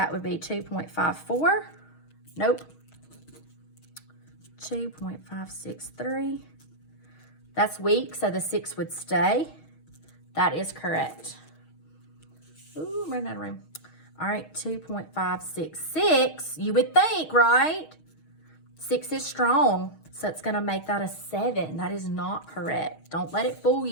would be 2.54. Nope. 2.563. That's weak, so the 6 would stay. That is correct. Ooh, I'm running out of room. All right, 2.566. You would think, right? 6 is strong, so it's going to make that a 7. That is not correct. Don't let it fool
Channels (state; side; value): late; right; 6.4 ms